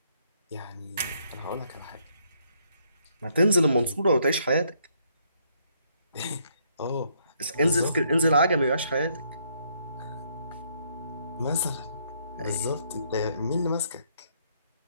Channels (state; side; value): inverted; both; correlation -0.70